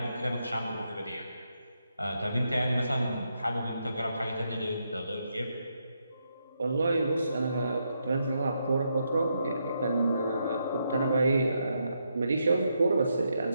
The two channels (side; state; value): both; inverted; correlation -0.80